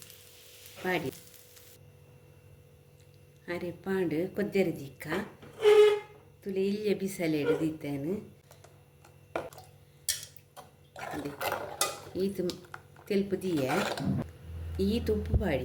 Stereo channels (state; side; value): identical; both; correlation 1.00